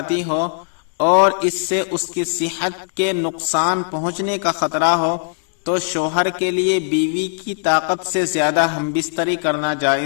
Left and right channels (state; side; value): silent; right; digital silence